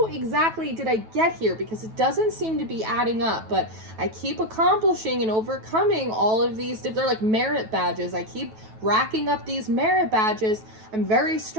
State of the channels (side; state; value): left; late; 9.2 ms